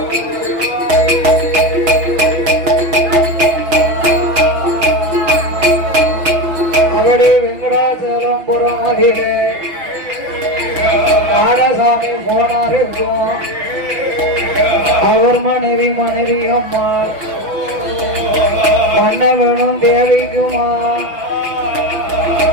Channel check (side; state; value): left; late; 6.2 ms